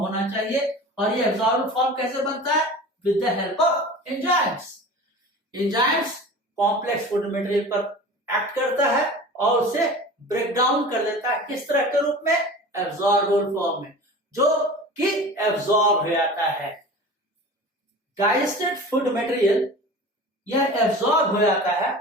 चाहिए। और ये एब्जॉर्बेबल फॉर्म कैसे बनता है? With the help of enzymes. Enzymes complex food material पर एक्ट करता है और उसे ब्रेक डाउन कर देता है। किस तरह के रूप में? एब्जॉर्बेबल फॉर्म में, जो कि एब्जॉर्ब हो जाता है। डाइजेस्टेड फूड मटेरियल यह एब्जॉर्ब हो जाता है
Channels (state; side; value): normal; both; correlation 0.37